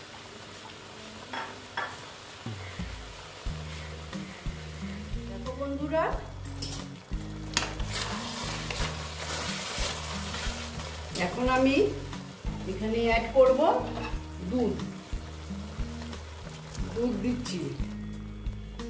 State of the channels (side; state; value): both; identical; correlation 1.00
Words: দেখো বন্ধুরা, এখন আমি এখানে অ্যাড করব দুধ। দুধ দিচ্ছি।